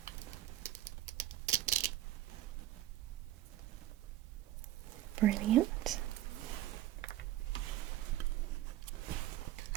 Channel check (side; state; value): left; quieter; 13.7 dB